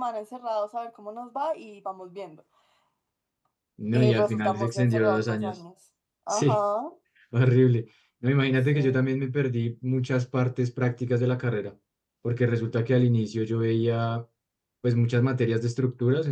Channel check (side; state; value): both; identical; correlation 1.00